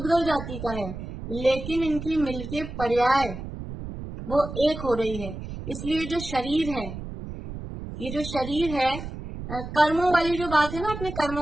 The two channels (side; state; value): right; noise; rumble, 9 dB below the sound